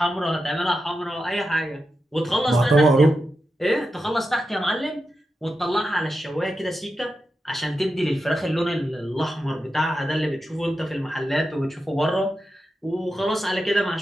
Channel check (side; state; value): both; normal; correlation 0.89